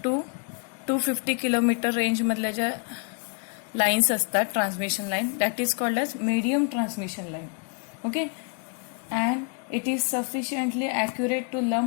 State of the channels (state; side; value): quieter; right; 39.5 dB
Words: to 250 kilometer range मधल्या ज्या lines असतात transmission line that is called as medium transmission line. Okay, and it is sufficiently accurate to